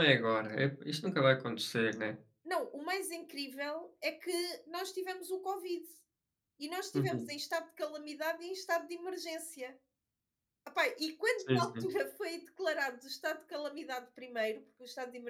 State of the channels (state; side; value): identical; both; correlation 1.00